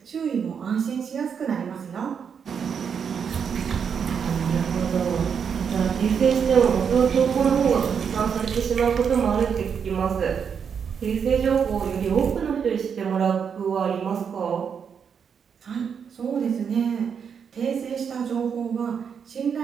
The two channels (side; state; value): left; quieter; 7.0 dB